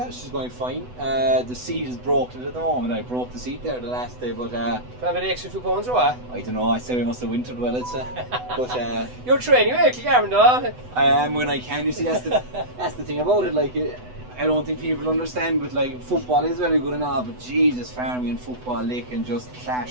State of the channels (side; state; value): left; late; 8.0 ms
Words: she's going fine. The seat is broken at the moment. I broke the seat there the last day, but have an extra 2 pounds or what? I don't know. I say we must have wintered well, I'd say. But you're training, you're Kilgarvan, though. I am when I can. You see, that's the thing about it. Like, I don't think people understand, but like football is very good and all, but Jesus, farming and football, they can just